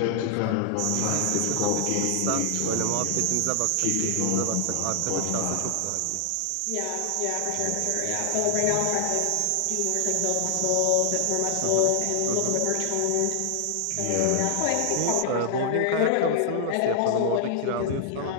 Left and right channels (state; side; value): different; both; correlation 0.00